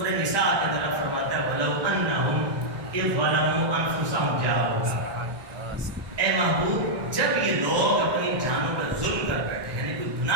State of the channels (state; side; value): late; left; 1.2 ms